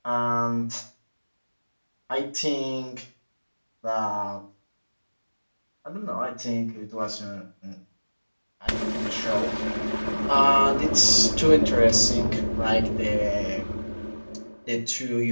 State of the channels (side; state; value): both; inverted; correlation -1.00